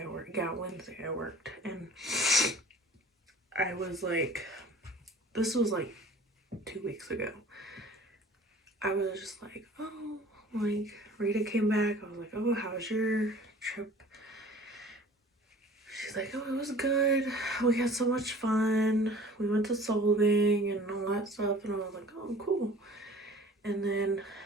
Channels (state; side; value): normal; both; correlation 0.46